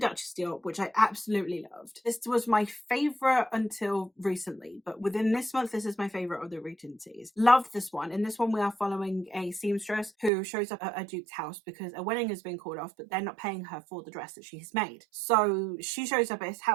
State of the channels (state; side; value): drops out; left; at 10.3 s